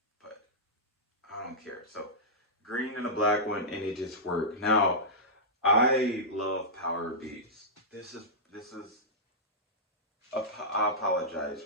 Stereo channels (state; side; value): normal; both; correlation -0.13